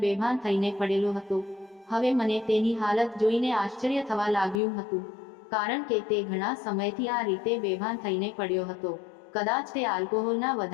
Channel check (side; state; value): right; drops out; at 4.6 s